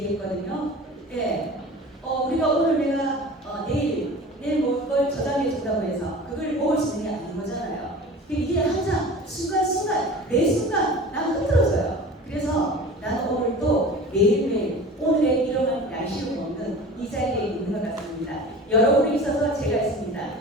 네, 우리가 오늘 내가 내일 먹을 걸 저장해 준다고 해서 그걸 먹을 수 있는 게 아닌 거잖아요. 이게 항상 순간순간 매 순간 나는 흐트러져요. 그래서 나는 오늘 또 매일매일 오늘의 일용할 양식을 먹는 이 자리에 있는 것 같습니다. 여러분이 있어서 제가 있습니다.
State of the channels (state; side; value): normal; both; correlation 0.38